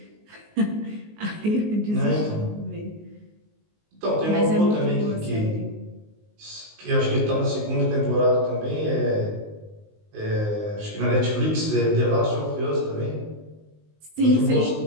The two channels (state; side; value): late; left; 19 ms